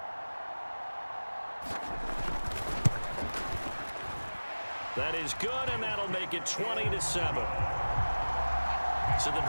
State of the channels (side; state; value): both; inverted; correlation -1.00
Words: That is good, and that'll make it 20-7. So the